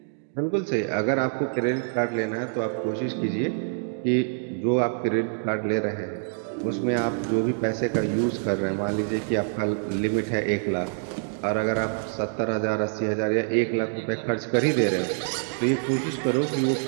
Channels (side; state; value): left; silent; digital silence